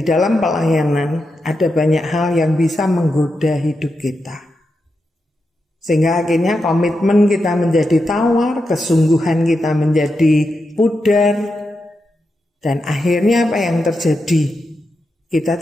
dalam pelayanan ada banyak hal yang bisa menggoda hidup kita. Sehingga akhirnya komitmen kita menjadi tawar, kesungguhan kita menjadi pudar. Dan akhirnya apa yang terjadi? Kita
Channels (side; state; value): both; normal; correlation 0.87